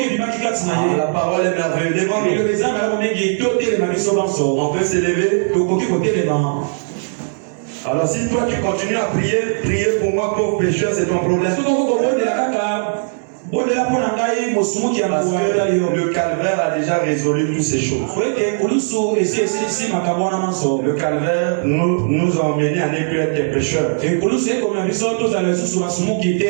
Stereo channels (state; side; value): silent; left; digital silence